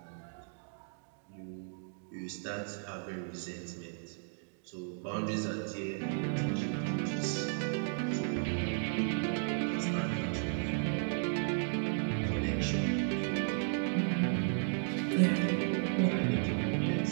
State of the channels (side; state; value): left; silent; digital silence